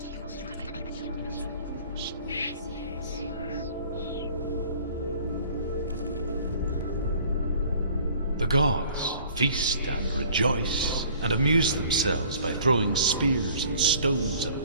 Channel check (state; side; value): inverted; both; correlation -0.52